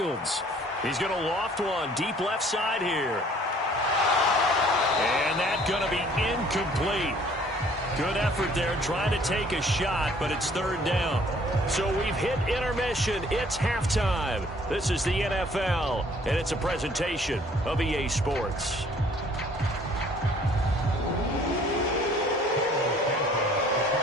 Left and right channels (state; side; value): normal; both; correlation 0.57